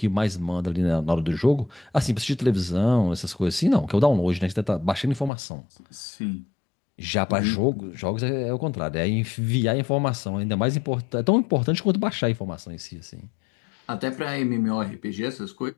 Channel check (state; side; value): drops out; right; at 5.3 s